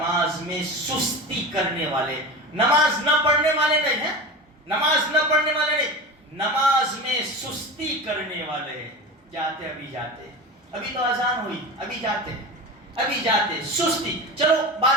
میں سستی کرنے والے. نماز نہ پڑھنے والے نہیں ہیں، نماز نہ پڑھنے والے نہیں، نماز میں سستی کرنے والے ہیں. جاتے ابھی جاتے، ابھی تو اذان ہوئی، ابھی جاتے ابھی جاتے، سستی. چلو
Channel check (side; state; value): both; normal; correlation 0.29